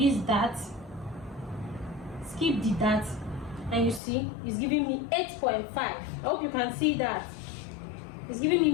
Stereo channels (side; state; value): right; drops out; at 4.0 s